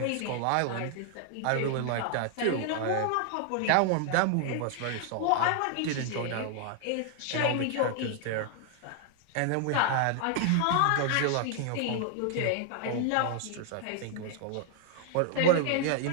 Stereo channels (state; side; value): different; both; correlation -0.01